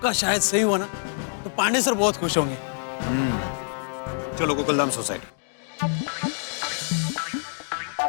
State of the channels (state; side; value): silent; right; digital silence